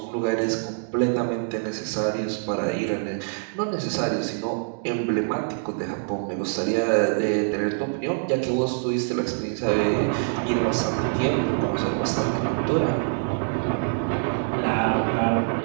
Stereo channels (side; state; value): left; silent; digital silence